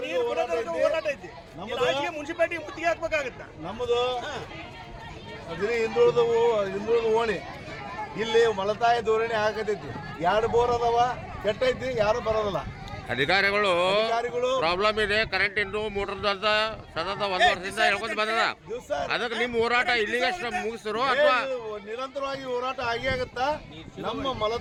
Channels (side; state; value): both; identical; correlation 1.00